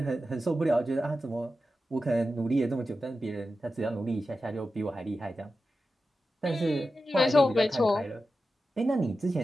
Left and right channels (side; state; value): both; normal; correlation 0.92